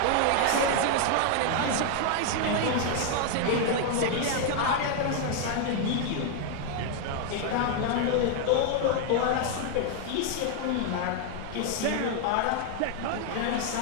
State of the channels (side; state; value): both; different; correlation 0.00